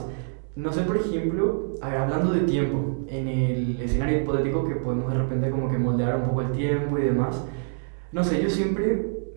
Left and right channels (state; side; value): silent; left; 61 dB below the other